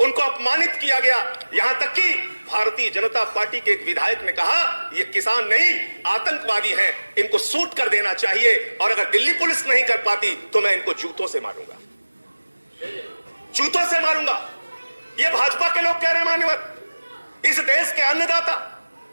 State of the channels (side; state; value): both; inverted; correlation -1.00